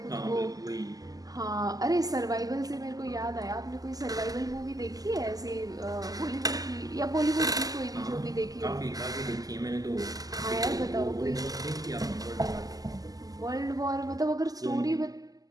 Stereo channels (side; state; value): left; late; 0.17 ms